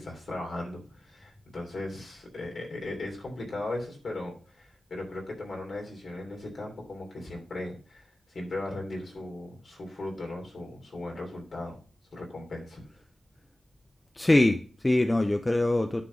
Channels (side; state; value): both; normal; correlation 0.97